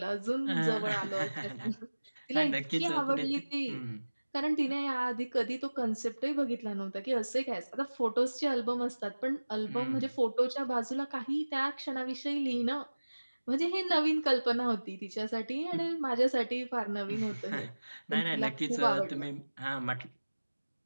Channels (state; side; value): inverted; both; correlation -1.00